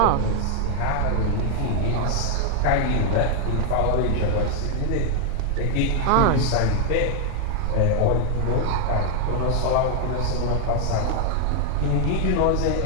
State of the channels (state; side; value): different; both; correlation 0.00